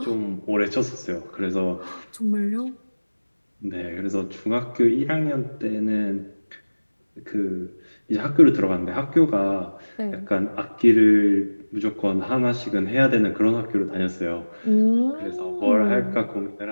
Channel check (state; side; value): inverted; both; correlation -1.00